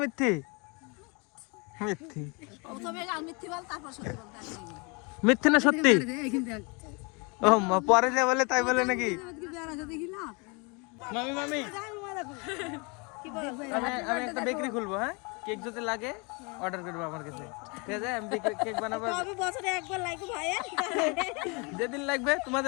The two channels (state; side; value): quieter; right; 31.0 dB